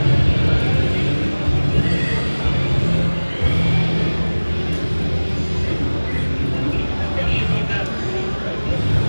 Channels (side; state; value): both; inverted; correlation -1.00